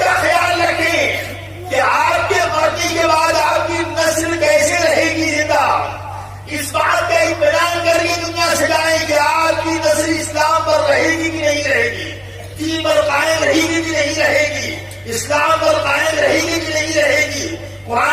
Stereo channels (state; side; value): identical; both; correlation 1.00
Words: کا خیال رکھیں کہ آپ کے مرنے کے بعد آپ کی نسل کیسے رہے گی زندہ. اس بات کا اطمینان کر کے دنیا سے جائیں کہ آپ کی نسل اسلام پر رہے گی کہ نہیں رہے گی، دین پر قائم رہے گی کہ نہیں رہے گی، اسلام پر قائم رہے گی کہ نہیں رہے گی،